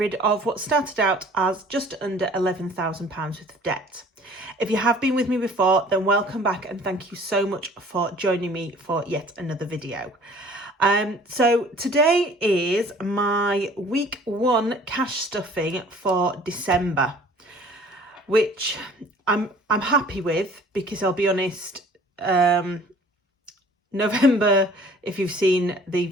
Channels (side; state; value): both; normal; correlation 0.51